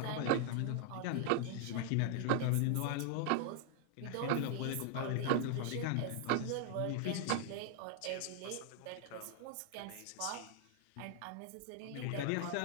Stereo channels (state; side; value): different; both; correlation 0.00